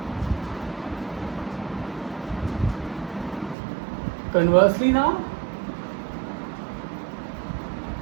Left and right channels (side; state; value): left; drops out; at 3.6 s